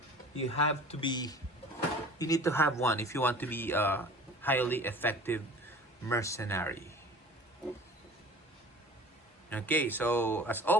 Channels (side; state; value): both; normal; correlation 0.43